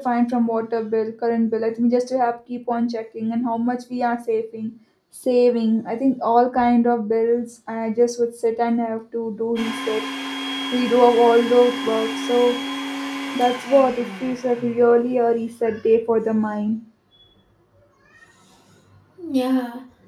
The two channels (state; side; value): identical; both; correlation 1.00